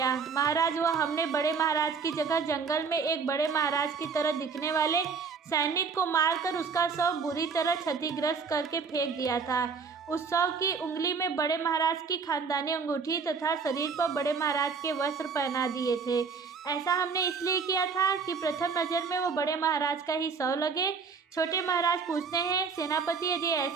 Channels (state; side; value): quieter; left; 5.4 dB